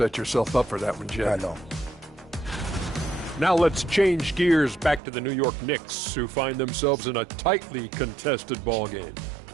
yourself up for that one, Jeff. I know. Now let's change gears back to the New York Knicks, who find themselves in a tightly contested ball game.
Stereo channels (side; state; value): left; drops out; at 5.0 s